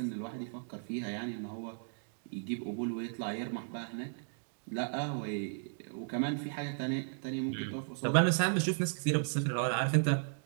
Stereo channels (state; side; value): silent; left; digital silence